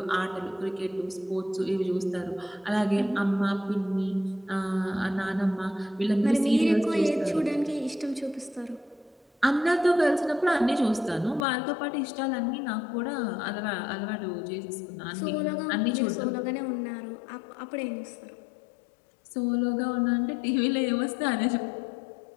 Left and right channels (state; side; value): drops out; right; at 11.5 s